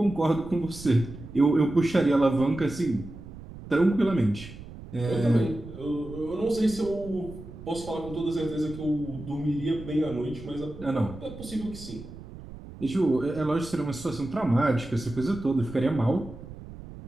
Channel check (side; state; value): right; noise; rumble, 14 dB below the sound